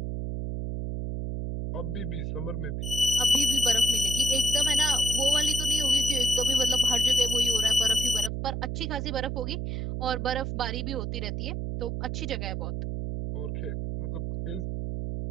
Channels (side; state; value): right; noise; hum, 3 dB below the sound